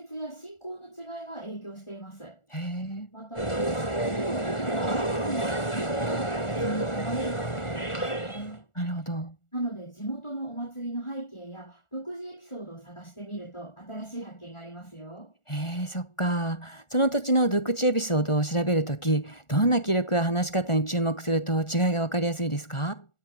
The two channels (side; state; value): right; late; 1.4 ms